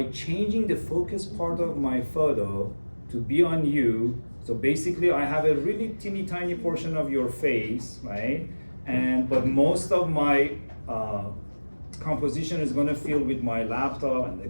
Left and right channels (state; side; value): inverted; both; correlation -1.00